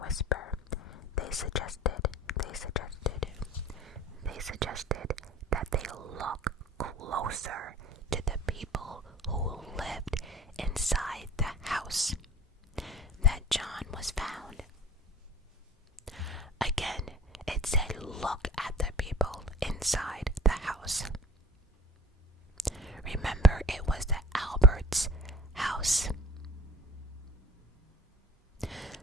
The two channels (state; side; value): normal; both; correlation 0.43